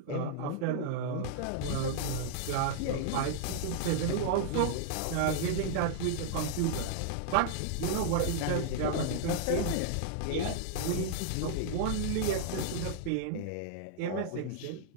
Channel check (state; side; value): different; both; correlation -0.01